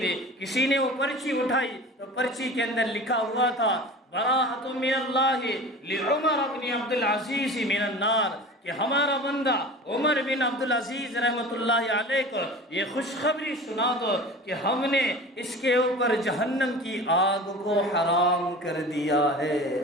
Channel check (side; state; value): both; normal; correlation 0.37